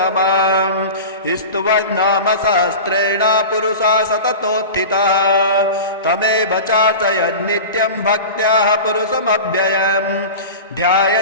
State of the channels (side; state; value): both; inverted; correlation -0.31